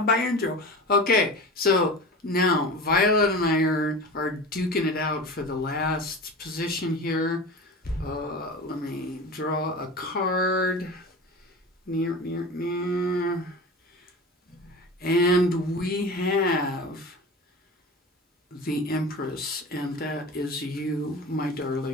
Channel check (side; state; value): both; normal; correlation 0.32